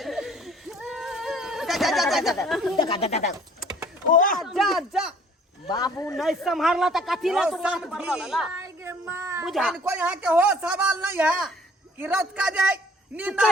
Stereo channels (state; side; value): normal; both; correlation 0.55